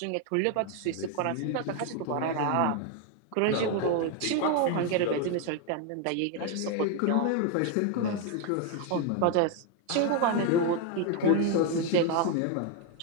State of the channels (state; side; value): different; both; correlation 0.01